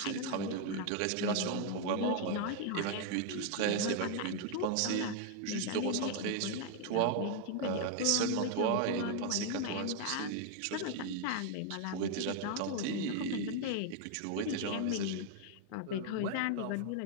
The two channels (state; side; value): different; both; correlation 0.00